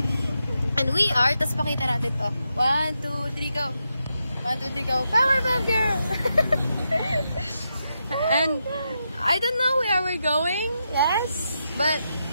And we are, tas pakita natin to. 1, 2, 3, go. 1, 2, 3, go. Powerpuff Girl! And I don't know where we're going. Yes. But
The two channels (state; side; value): inverted; both; correlation -0.85